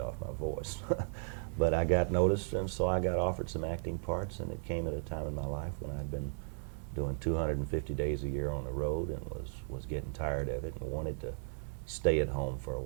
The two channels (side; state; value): left; silent; 54 dB below the other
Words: off my voice. But I got noticed, and so I got offered some acting parts, and it came at a time in my life when I'd been doing 250 days a year on the road and was getting tired of it and wanted to stay at home for a